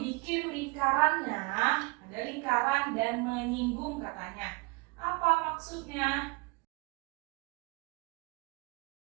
lingkarannya, ada lingkaran dan menyinggung katanya. Apa maksudnya?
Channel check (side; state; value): left; quieter; 28.5 dB